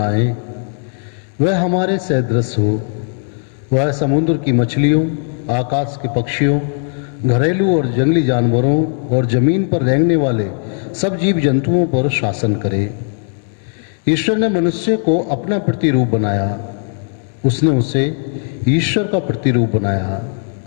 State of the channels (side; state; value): right; silent; 59 dB below the other